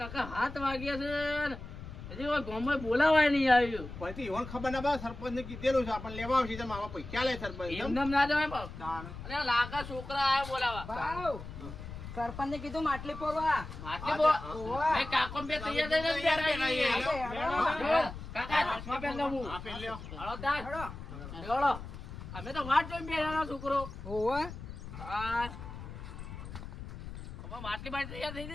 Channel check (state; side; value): noise; left; rumble, 11 dB below the sound